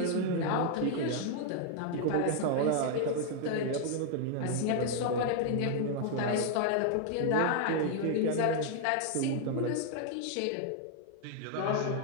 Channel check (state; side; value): different; both; correlation 0.00